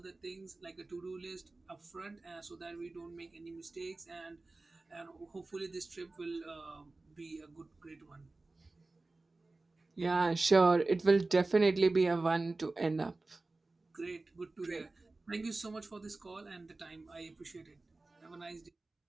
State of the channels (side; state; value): left; quieter; 3.3 dB